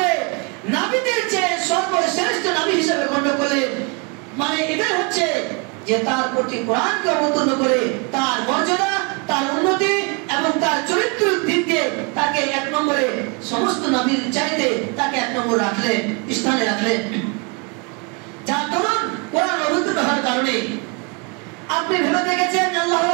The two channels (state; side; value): quieter; left; 32.0 dB